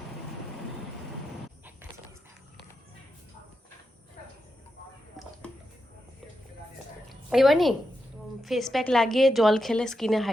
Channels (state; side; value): normal; both; correlation 0.87